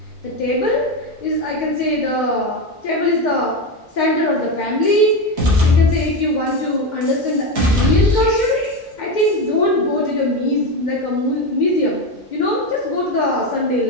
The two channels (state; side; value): normal; both; correlation 0.15